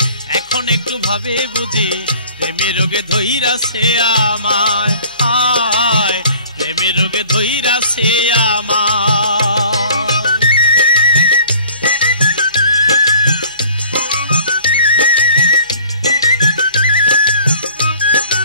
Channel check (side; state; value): both; inverted; correlation -0.50